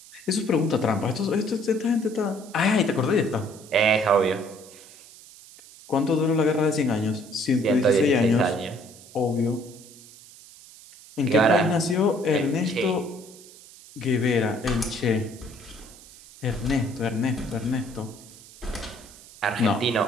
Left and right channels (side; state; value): right; noise; hiss, 21 dB below the sound